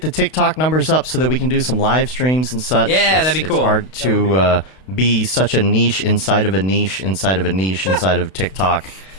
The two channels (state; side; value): late; right; 32 ms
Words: the TikTok numbers up so that we can do some live streams and such. Yeah, that'd be cool. It's hard to be such a niche inside of a niche inside of a niche inside of TikTok.